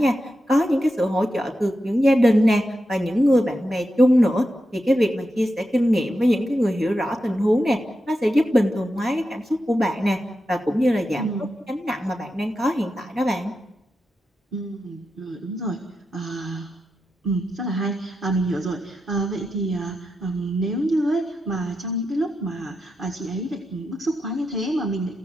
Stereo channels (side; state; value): both; normal; correlation 0.88